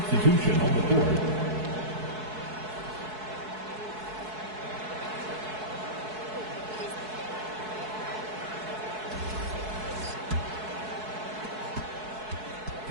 on the court.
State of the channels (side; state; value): left; late; 4.6 ms